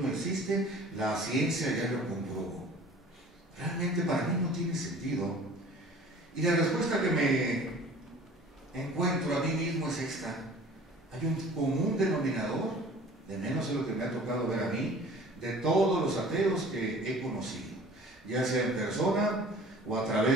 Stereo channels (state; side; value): normal; both; correlation 0.47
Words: no existe, la ciencia ya lo comprobó. Realmente para mí no tiene sentido. Y la respuesta que me encuentro a mí mismo es esta: hay un común denominador, de menos de lo que me ha tocado ver a mí, de todos los ateos que he conocido, ya sea en persona o a